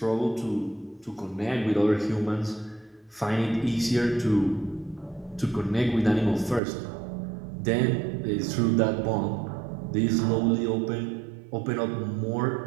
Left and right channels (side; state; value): left; drops out; at 6.6 s